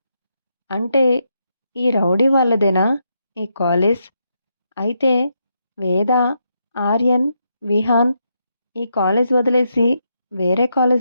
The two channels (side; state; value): both; inverted; correlation -0.81